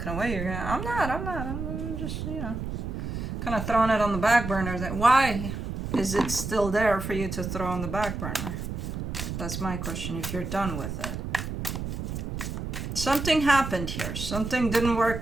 away, you're going to, I'm just, you know, kind of throwing it on the back burner. Why is it still there for you to throw on the back burner? That's my question, if you're done with it. Something happened here. Something didn't work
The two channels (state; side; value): noise; right; rumble, 5 dB below the sound